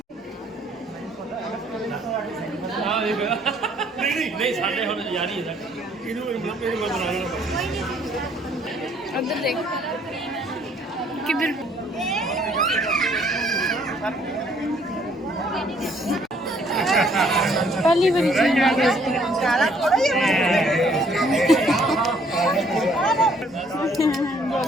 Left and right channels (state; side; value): normal; both; correlation 0.63